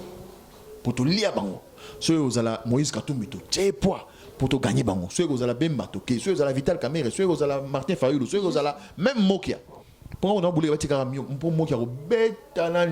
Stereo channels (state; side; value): identical; both; correlation 1.00